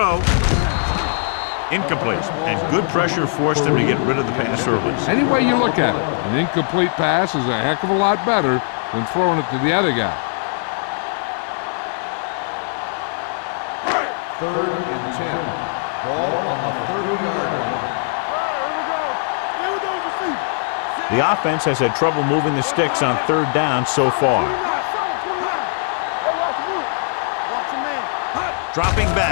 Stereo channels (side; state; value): right; silent; 64 dB below the other